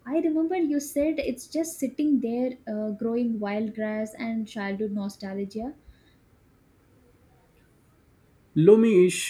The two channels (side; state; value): both; identical; correlation 1.00